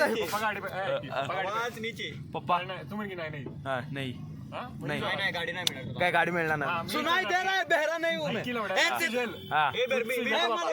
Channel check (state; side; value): identical; both; correlation 1.00